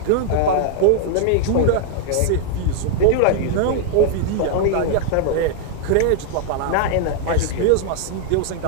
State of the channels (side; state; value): both; different; correlation 0.00